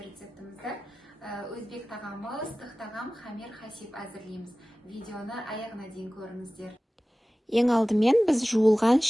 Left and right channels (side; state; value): both; normal; correlation 0.97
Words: рецептімізді өзбек тағамы, ыстық тағам хамир хасиб әзірлейміз. Видеоны аяғына дейін көріңіздер. Ең алдымен біз жуылған